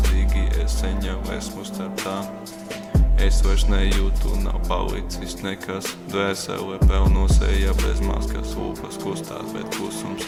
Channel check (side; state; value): both; identical; correlation 1.00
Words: es seņa esmu starp tām. Es vairs nejūtu, nav palicis nekas. Dvēsele pelno seja bez maskas. Lūpas kustās, bet klusums